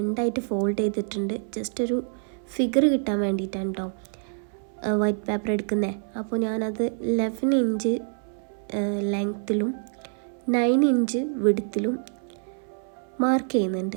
ഫോൾഡ് ചെയ്തിട്ടുണ്ട്. ജസ്റ്റ് ഒരു ഫിഗർ കിട്ടാൻ വേണ്ടിയിട്ടാണ് കേട്ടോ വൈറ്റ് പേപ്പർ എടുക്കുന്നത്. അപ്പോൾ ഞാനത് 11 ഇഞ്ച് ലെങ്ത്തിലും 9 ഇഞ്ച് വിഡ്ത്തിലും മാർക്ക്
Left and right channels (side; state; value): left; silent; 60 dB below the other